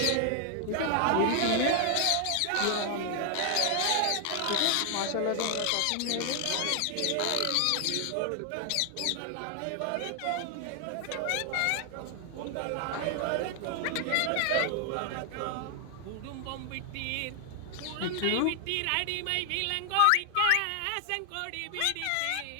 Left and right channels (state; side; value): different; both; correlation 0.00